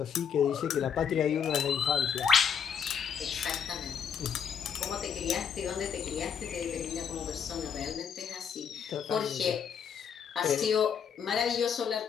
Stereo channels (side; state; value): right; quieter; 7.4 dB